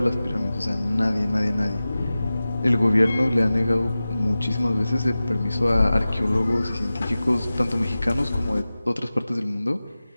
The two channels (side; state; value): both; inverted; correlation -0.96